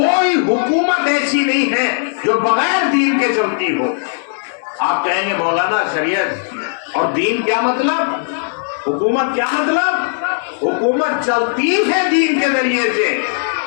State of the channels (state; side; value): silent; right; digital silence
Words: حکومت ایسی نہیں ہے جو بغیر دین کے چلتی ہو۔ آپ کہیں گے مولانا شریعت اور دین کیا مطلب، حکومت کیا مطلب؟ حکومت چلتی ہے دین کے ذریعے سے،